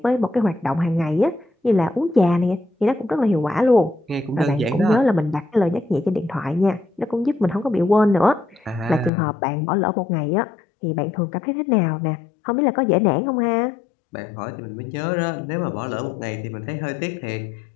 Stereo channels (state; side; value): drops out; right; at 9.1 s